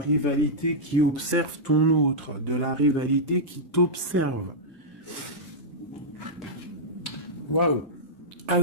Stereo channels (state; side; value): normal; both; correlation -0.09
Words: qui observe ton autre, de la rivalité qui t'observe. Waouh!